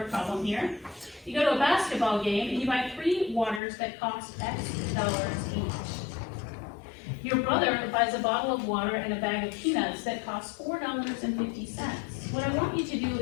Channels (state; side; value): drops out; right; at 3.6 s